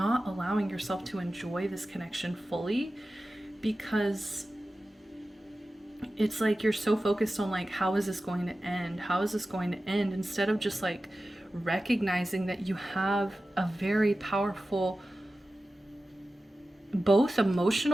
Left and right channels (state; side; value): normal; both; correlation 0.94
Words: allowing yourself to enjoy this connection fully, because it's like you're so focused on like, how is this going to end? How is this going to end? Instead of just like recognizing that you have a very powerful both